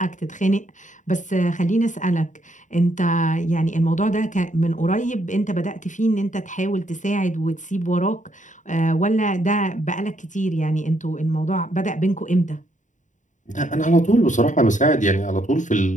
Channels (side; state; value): right; late; 0.36 ms